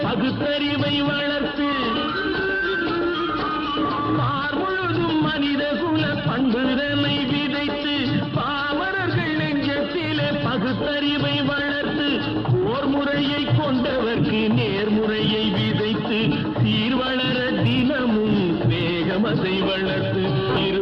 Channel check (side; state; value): both; identical; correlation 1.00